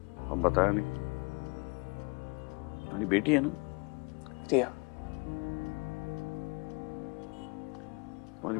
अब बताया नहीं। तुम्हारी बेटी है ना? रिया। तुम्हारी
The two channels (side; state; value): right; quieter; 29.6 dB